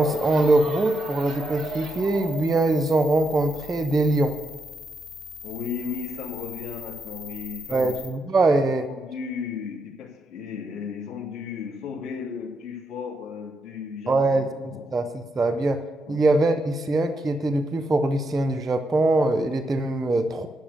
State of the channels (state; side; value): normal; both; correlation 0.81